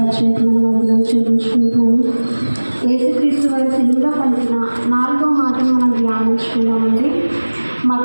వందనాలు చెల్లించుకుంటాను. యేసుక్రీస్తు వారి సిలువలో పలికిన 4వ మాటను మనం ధ్యానించుకున్నామండి.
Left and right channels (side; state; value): both; inverted; correlation -1.00